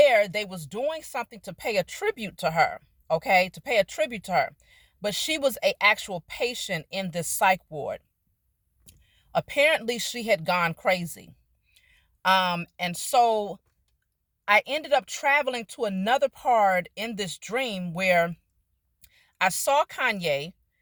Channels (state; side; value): identical; both; correlation 1.00